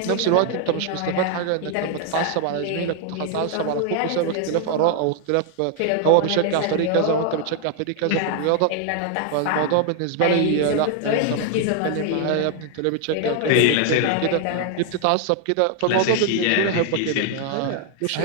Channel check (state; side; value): different; both; correlation 0.00